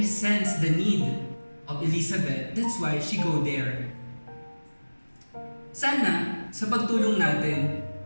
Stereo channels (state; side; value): inverted; both; correlation -1.00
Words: sensed the need of Elizabeth. That's why she go there. Sana, sa pagtulong natin,